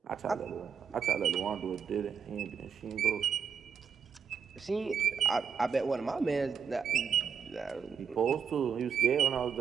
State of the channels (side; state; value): left; quieter; 6.9 dB